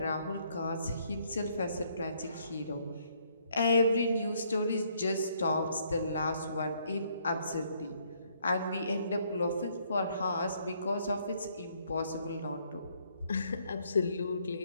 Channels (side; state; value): both; inverted; correlation -0.69